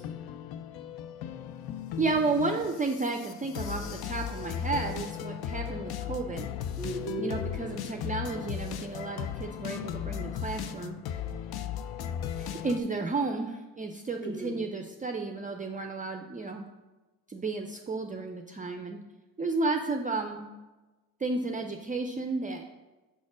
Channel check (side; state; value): both; normal; correlation 0.37